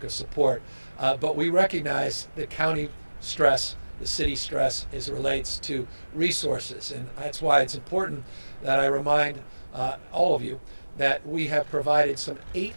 of support. But we recognize the county stress, the city stress, as it relates to resources. And that's why it's important that I remind all of you that we have provided some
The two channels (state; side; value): inverted; both; correlation -1.00